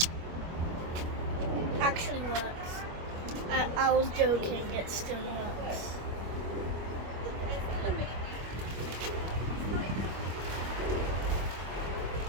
Actually works. I was joking. It still works.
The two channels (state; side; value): late; left; 25 ms